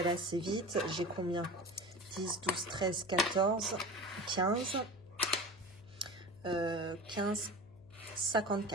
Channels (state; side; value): noise; left; hum, 23 dB below the sound